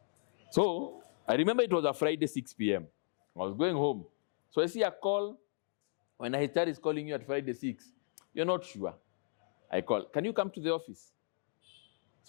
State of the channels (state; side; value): silent; right; digital silence